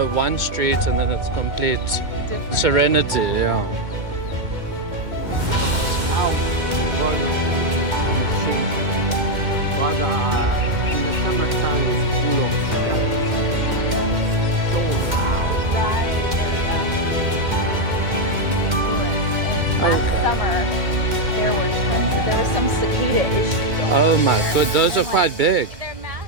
one street and then it's complete serenity. Yeah. Last summer, there were some cicada issues. Oh my god, those are quite big. They're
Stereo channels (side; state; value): left; late; 2.1 ms